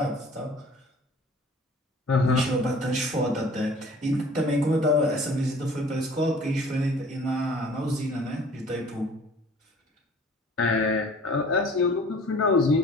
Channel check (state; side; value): normal; both; correlation 0.49